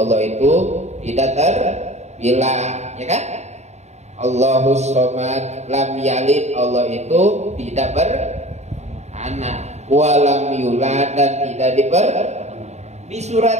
itu tidak terbilang, ya kan? Allahus somad, lam yalid, Allah itu tidak beranak, walam yulad, dan tidak Di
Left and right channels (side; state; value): left; late; 0.32 ms